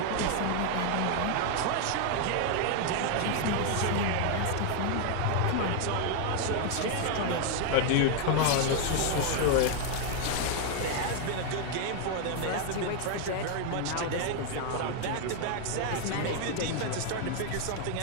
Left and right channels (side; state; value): both; different; correlation 0.00